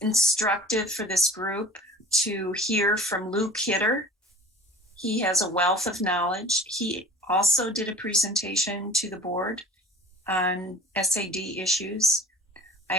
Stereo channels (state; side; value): normal; both; correlation 0.42